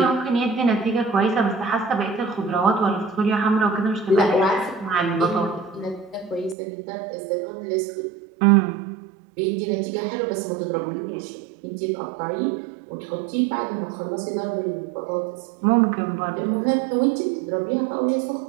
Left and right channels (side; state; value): left; drops out; at 6.6 s